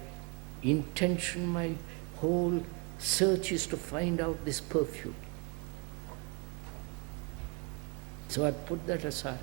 intention, my whole search is to find out this perfume. So I put that aside.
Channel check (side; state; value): left; quieter; 33.0 dB